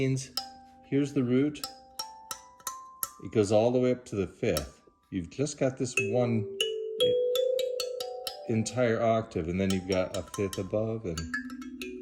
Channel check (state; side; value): identical; both; correlation 1.00